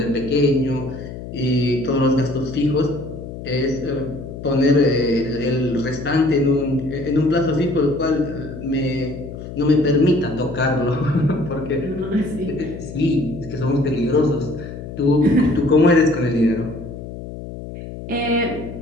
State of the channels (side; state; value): left; noise; hum, 11 dB below the sound